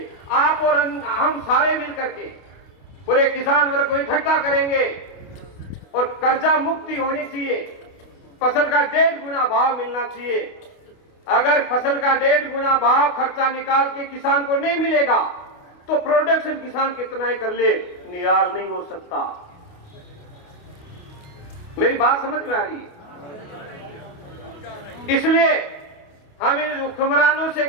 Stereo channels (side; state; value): right; late; 29 ms